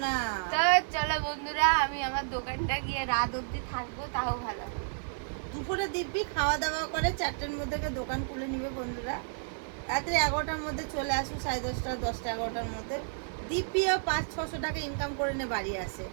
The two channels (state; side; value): silent; left; digital silence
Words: না। তো চলো বন্ধুরা, আমি আমার দোকানটা গিয়ে রাত অবধি থাকবো, তাও ভালো। দুপুরে দিব্যি খাওয়া দাওয়া করে 4টের মধ্যে দোকান খুলে নিবে বন্ধুরা। রাত্রে 11টার মধ্যে চলে আসুন, 10:30, 10টা 11টার মধ্যে দিব্যিও 500-600 টাকা ইনকাম করে নে বাড়ি আসে।